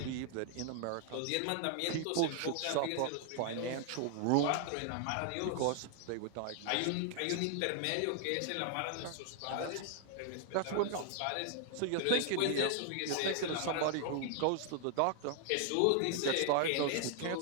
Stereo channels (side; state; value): both; different; correlation 0.00